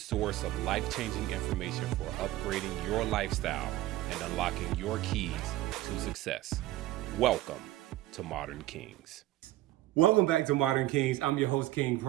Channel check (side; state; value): left; quieter; 15.8 dB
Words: of life-changing information for upgrading your lifestyle and unlocking your keys to success. Welcome to Modern Kings. Welcome back to Modern Kings. I'm your host, King